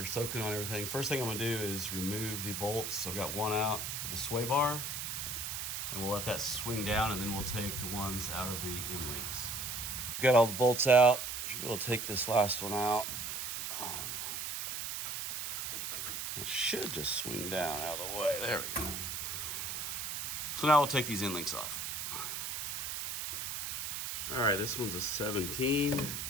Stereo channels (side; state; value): right; noise; hiss, 4 dB below the sound